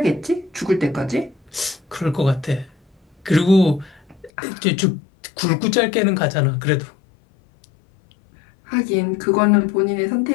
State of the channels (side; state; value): right; drops out; at 4.3 s